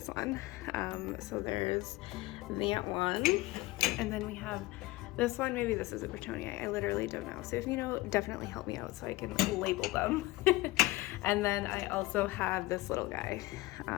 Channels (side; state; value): right; quieter; 19.9 dB